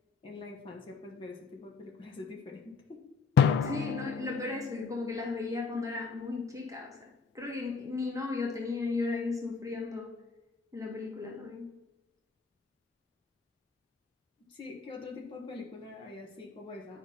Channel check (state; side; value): quieter; right; 5.0 dB